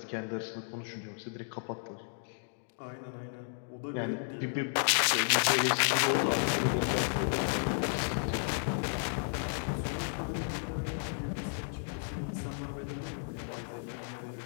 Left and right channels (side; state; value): right; silent; digital silence